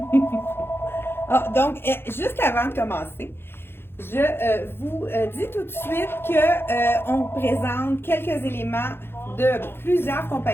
Ah, donc, juste avant de commencer, je vous dis tout de suite que on présente quelques éléments de plusieurs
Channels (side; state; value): right; late; 0.11 ms